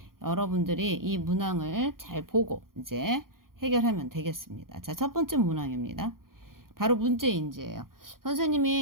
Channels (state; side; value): late; left; 0.92 ms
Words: 여러분들이 이 문항을 잘 보고 이제 해결하면 되겠습니다. 자, 첫 번째 문항입니다. 바로 문제인지예요.